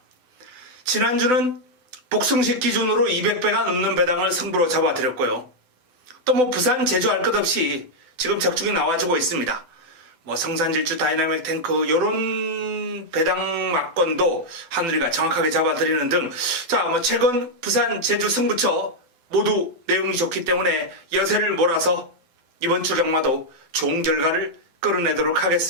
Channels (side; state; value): left; late; 8.0 ms